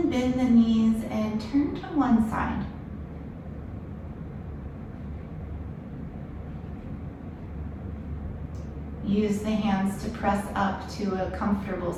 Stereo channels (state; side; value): identical; both; correlation 1.00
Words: bend the knees and turn to one side. Use the hands to press up to a comfortable